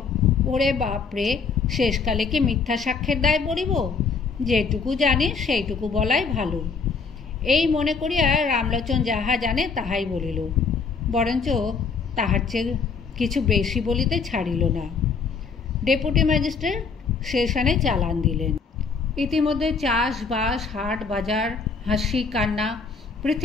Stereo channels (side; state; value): right; quieter; 5.1 dB